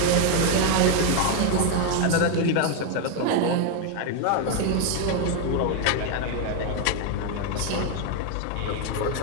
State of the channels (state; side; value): different; both; correlation 0.01